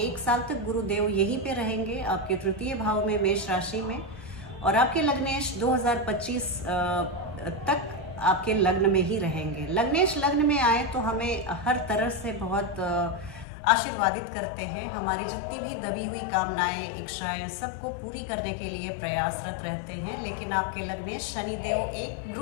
साल तक गुरुदेव यहीं पे रहेंगे आपके तृतीय भाव में, मेष राशि में। और आपके लग्नेश 2025 तक आपके लग्न में ही रहेंगे। लग्नेश लग्न में आए तो हमें हर तरह से बहुत आशीर्वादित करते हैं। हमारी जितनी भी दबी हुई कामनाएं, इच्छाएं, सबको पूरी करने के लिए प्रयासरत रहते हैं। लेकिन आपके लग्नेश शनिदेव एक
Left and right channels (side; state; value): right; drops out; at 13.5 s